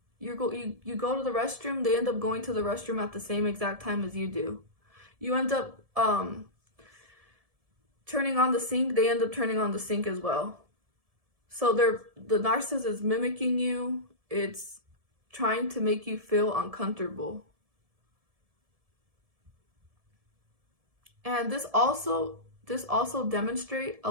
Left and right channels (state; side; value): late; left; 1.7 ms